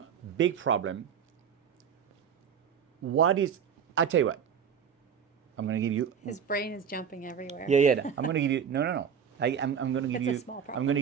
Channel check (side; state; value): left; quieter; 7.5 dB